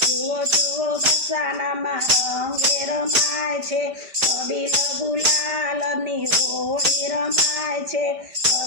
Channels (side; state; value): left; late; 5.0 ms